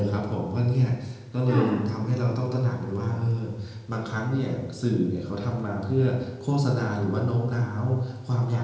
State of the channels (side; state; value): both; identical; correlation 1.00